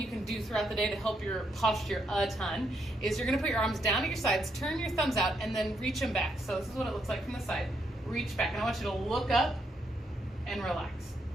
can do throughout the day to help your posture a ton, is you're gonna put your arms down at your sides, turn your thumbs out, and then reach them back. So this is what it looks like from the side. Reach back, and I want you to look up and relax.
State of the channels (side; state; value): both; normal; correlation 0.77